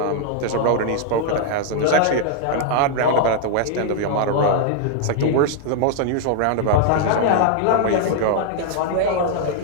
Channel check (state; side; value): different; both; correlation 0.00